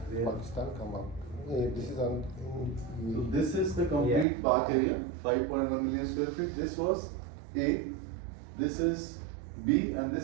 Yeah. Pakistan come out. This is on. So this is the complete park area, 5.1 million square feet. This was A, this is B, and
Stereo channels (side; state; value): left; drops out; at 4.2 s